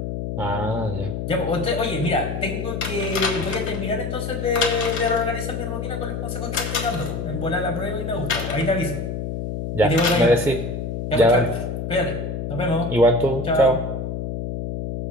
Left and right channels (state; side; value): noise; left; hum, 4 dB below the sound